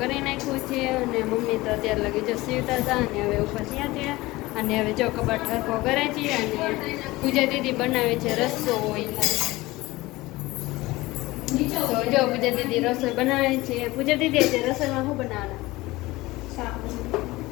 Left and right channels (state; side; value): quieter; right; 19.9 dB